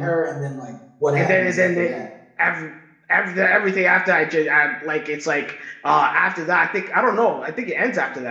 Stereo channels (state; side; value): identical; both; correlation 1.00